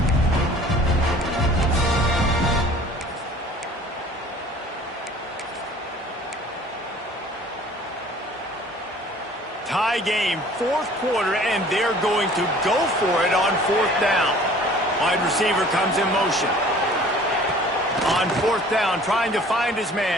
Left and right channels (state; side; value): normal; both; correlation 0.50